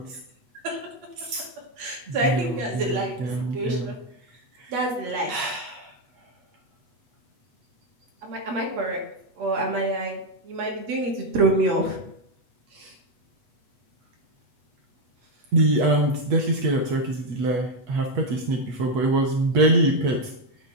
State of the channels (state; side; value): late; left; 8.1 ms